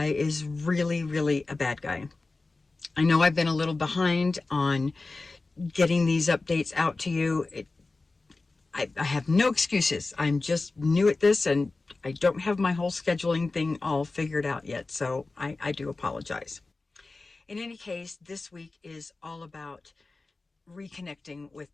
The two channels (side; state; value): right; quieter; 3.5 dB